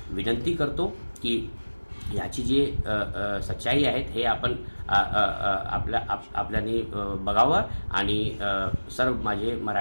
विनंती करतो की याची जी सच्चाई आहेत हे आपण आपल्याने बघावं. आणि सर्व माझे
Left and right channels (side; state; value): both; inverted; correlation -1.00